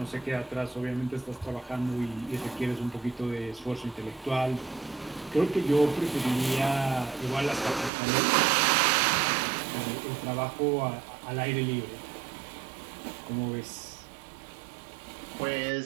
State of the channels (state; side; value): drops out; left; at 7.9 s